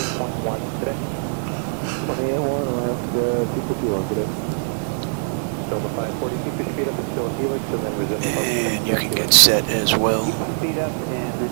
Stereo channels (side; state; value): left; silent; 64 dB below the other